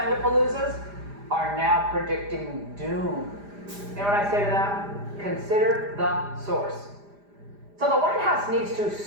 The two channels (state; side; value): late; left; 5.0 ms